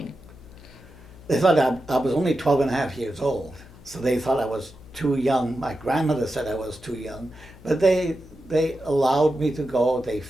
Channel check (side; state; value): left; noise; hum, 21 dB below the sound